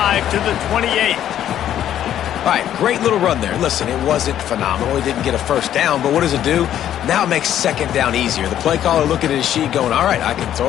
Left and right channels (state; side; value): quieter; right; 11.0 dB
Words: to the 28. All right, great little run there. Listen, it wasn't phenomenal. He didn't get a 1st down, but what does it do? Now it makes 2nd down easier. The play caller looking at his sheet going, all right, I can throw